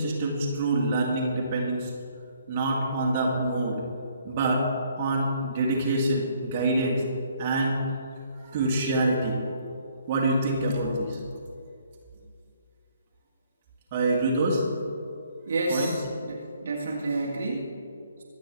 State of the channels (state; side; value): inverted; both; correlation -0.65